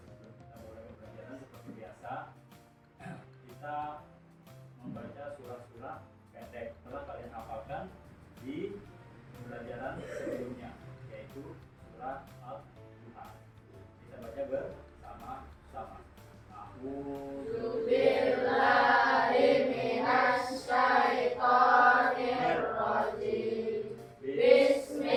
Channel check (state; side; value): identical; both; correlation 1.00